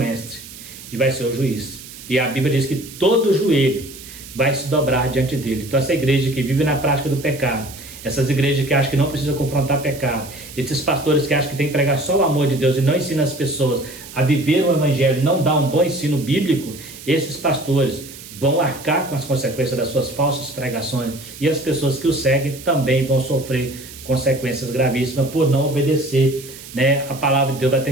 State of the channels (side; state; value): right; noise; hiss, 16 dB below the sound